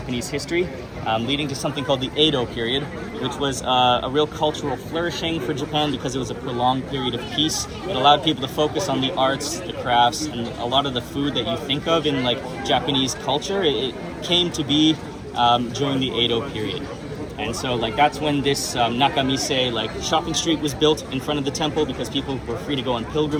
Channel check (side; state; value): both; identical; correlation 1.00